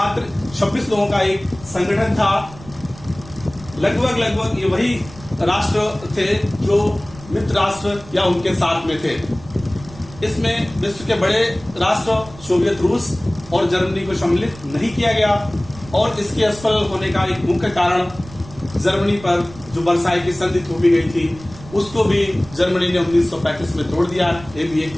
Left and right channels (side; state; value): right; noise; rumble, 18 dB below the sound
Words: 26 लोगों का एक संगठन था। लगभग ये वही राष्ट्र थे जो मित्र राष्ट्र या उनके साथ में थे। इसमें विश्व के बड़े राष्ट्र सोवियत रूस और जर्मनी को सम्मिलित नहीं किया गया और इसके असफल होने का एक मुख्य कारण जर्मनी पर जो वर्साई की संधि थोपी गई थी उसको भी जर्मनी ने 1935 में तोड़ दिया। ये भी